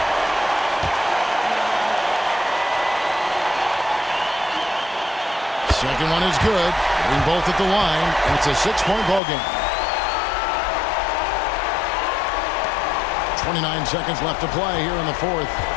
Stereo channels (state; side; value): drops out; right; at 9.2 s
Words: Second one is good. Hitting both at the line, and it's a 6-point ball game. 29 seconds left to play here in the fourth.